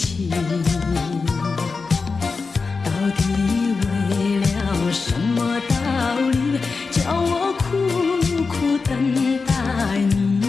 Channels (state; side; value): quieter; right; 4.5 dB